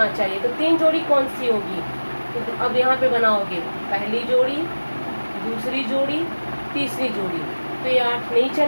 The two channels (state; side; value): inverted; both; correlation -1.00